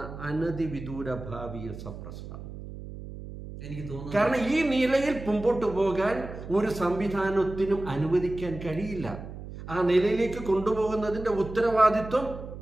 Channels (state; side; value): noise; right; hum, 12 dB below the sound